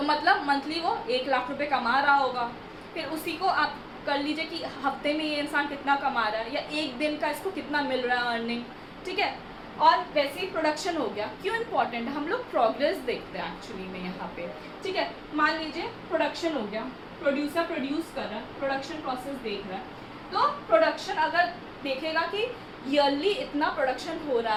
मतलब मंथली वो 1 लाख रुपए कमा रहा होगा। फिर उसी को आप कर लीजिए कि हफ्ते में ये इंसान कितना कमा रहा है, या एक दिन का इसको कितना मिल रहा है अर्निंग। ठीक है, और वैसे ही प्रोडक्शन हो गया। क्यों इम्पॉर्टेंट है? हम लोग प्रोग्रेस देखते हैं एक्चुअली में यहाँ पे। ठीक है, मान लीजिए प्रोडक्शन हो गया, प्रोड्यूसर प्रोड्यूस कर रहा है, प्रोडक्शन प्रोसेस देख रहा है, तो प्रोडक्शन अगर देखेगा कि ईयरली इतना प्रोडक्शन हो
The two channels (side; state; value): both; identical; correlation 1.00